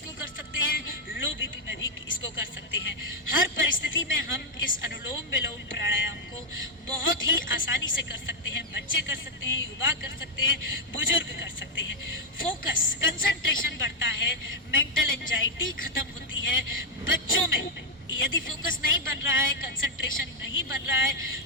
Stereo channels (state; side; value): normal; both; correlation -0.01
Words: कर सकते हैं, लो बीपी में भी इसको कर सकते हैं। हर परिस्थिति में हम इस अनुलोम विलोम प्राणायाम को बहुत ही आसानी से कर सकते हैं। बच्चे कर सकते हैं, युवा कर सकते हैं, बुजुर्ग कर सकते हैं। फोकस, कंसंट्रेशन बढ़ता है, मेंटल एंजाइटी खत्म होती है। बच्चों में यदि फोकस नहीं बन रहा है, कंसंट्रेशन नहीं बन रहा